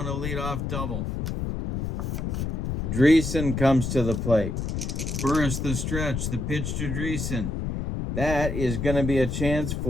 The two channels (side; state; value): left; noise; rumble, 2 dB below the sound